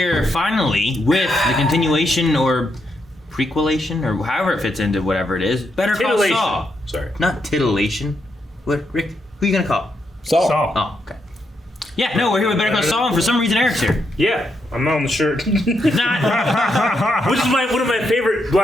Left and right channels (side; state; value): both; normal; correlation 0.80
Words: finally with the continuation or prequelation or however it fits into whatever it is. Better Call Saul. Sorry. Not titillation. What, Rick? Who are you gonna call? Saul. Oh, okay. Yeah, no, we're here with Better Call Saul, and for some reason Eric's here. Yeah, I'm not on the shirt. Not. Which is one of my favorite